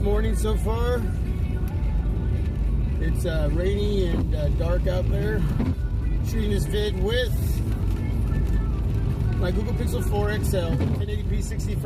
so far. It's rainy and dark out there. Shooting this vid with my Google Pixel 4 XL, 1080p 60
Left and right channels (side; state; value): both; identical; correlation 1.00